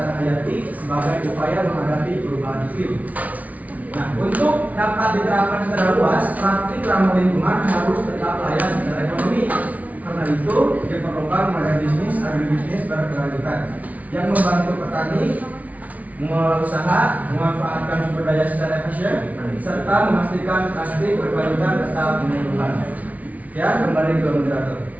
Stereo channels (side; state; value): left; late; 0.071 ms